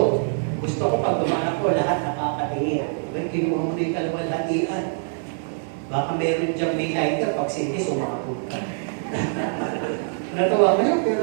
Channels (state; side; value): silent; left; 63 dB below the other